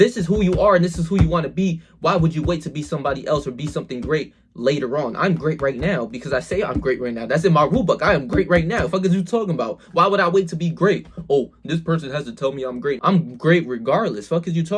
is who you are and this is who you want to be. Why would you wait to be somebody else or be something great later on? I'm great right now because I say I'm great right now. That's in my rule book. I am great right now. Fuck is you talking about? Why would I wait to be great? Oh, this person has to tell me I'm great. I'm great regardless. Fuck is you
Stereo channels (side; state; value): both; identical; correlation 1.00